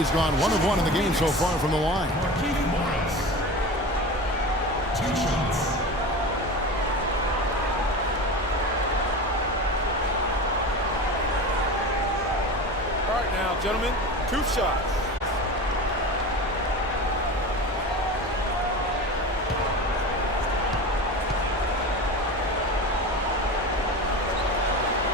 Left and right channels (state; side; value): normal; both; correlation 0.30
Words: gone 1 of 1 in the game so far from the line. Gentlemen, 2 shots.